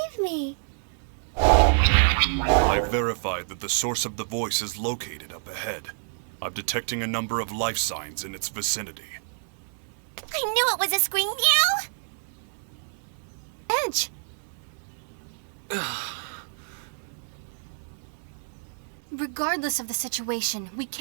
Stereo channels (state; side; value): silent; left; 60 dB below the other